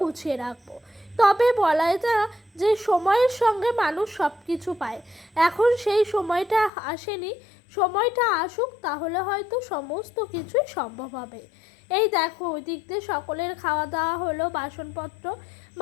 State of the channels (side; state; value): right; drops out; at 6.7 s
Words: গুছিয়ে রাখবো। তবে বলাই যায় যে সময়ের সঙ্গে মানুষ সব কিছু পায়, এখন সেই সময়টা আসেনি। সময়টা আসুক, তাহলে হয়তো সমস্ত কিছুই সম্ভব হবে। এই দেখো ওই দিক দিয়ে সকলের খাওয়া দাওয়া হলো, বাসনপত্র